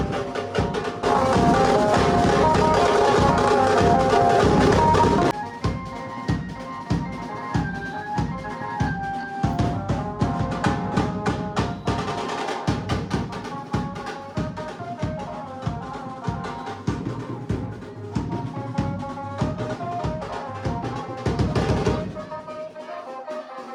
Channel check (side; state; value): both; identical; correlation 1.00